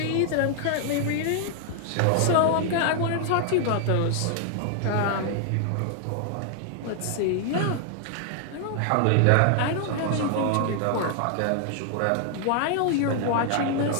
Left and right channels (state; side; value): different; both; correlation 0.00